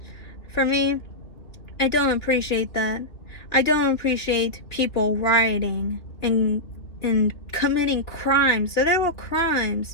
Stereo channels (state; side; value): late; right; 3.0 ms